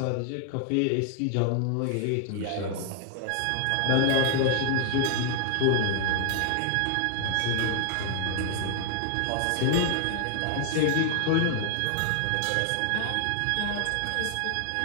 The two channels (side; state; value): both; different; correlation 0.00